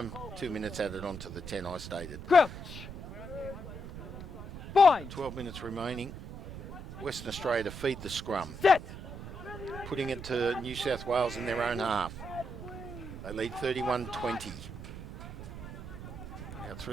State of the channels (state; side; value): noise; right; rumble, 10 dB below the sound